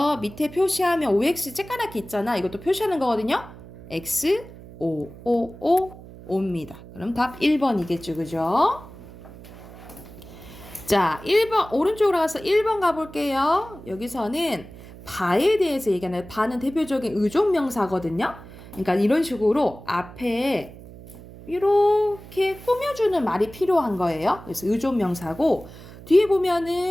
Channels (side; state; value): right; noise; hum, 17 dB below the sound